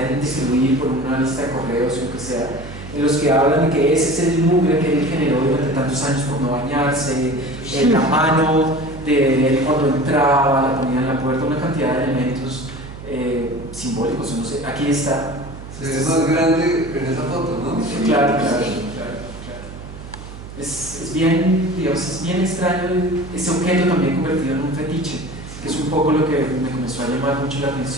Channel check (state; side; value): noise; right; hum, 13 dB below the sound